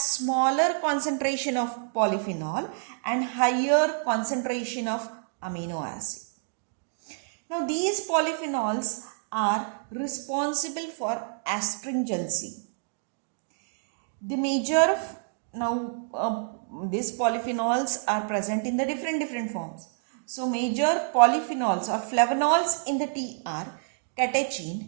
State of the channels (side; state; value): left; silent; digital silence